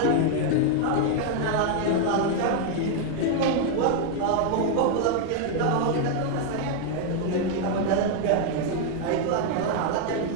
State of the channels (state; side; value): different; both; correlation 0.00